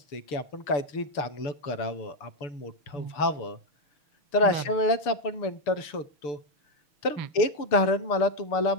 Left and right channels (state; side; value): late; right; 6.8 ms